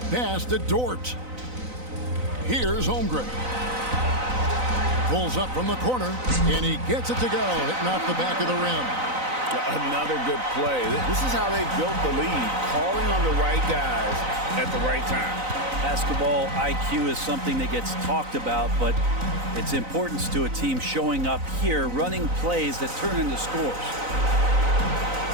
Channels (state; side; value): late; left; 3.9 ms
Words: Pass to Dort. Here's Holmgren. Pulls up from the corner, and he gets it to go, hitting off the back of the rim. Another good play. This is how they built the lead, calling on the right guys at the right time. Basketball IQ is something that gets talked about, but its importance to a team showing up here, running plays that turn into scores.